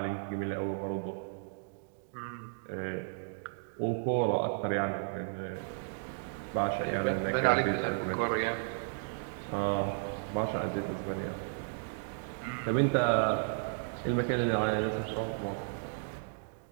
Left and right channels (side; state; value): left; silent; digital silence